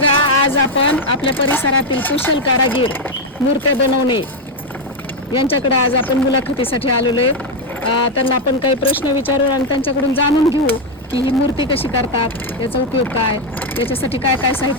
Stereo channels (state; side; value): normal; both; correlation 0.05